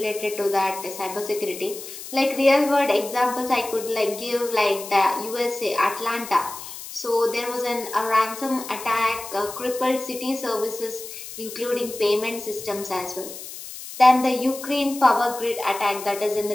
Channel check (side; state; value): left; noise; hiss, 12 dB below the sound